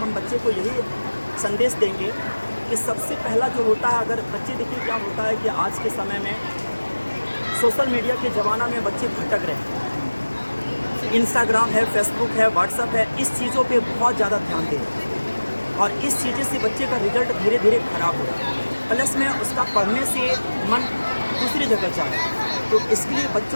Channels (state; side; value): inverted; both; correlation -1.00